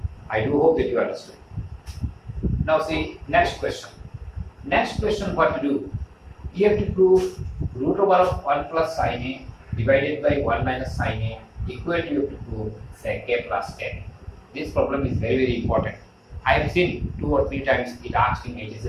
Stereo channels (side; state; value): both; identical; correlation 1.00